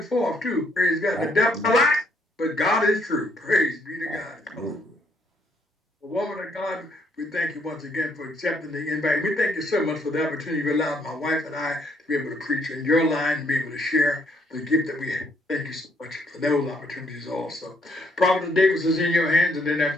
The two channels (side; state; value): both; normal; correlation 0.70